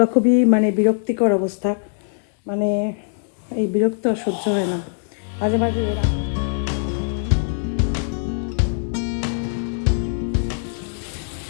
খুবই মানে বিরক্তিকর অবস্থা, মানে এই বিরক্ত আর সহ্য হয় না মাঝে মাঝে এরা।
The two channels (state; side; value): silent; right; digital silence